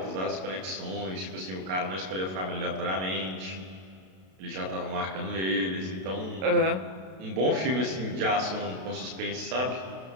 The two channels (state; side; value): late; left; 32 ms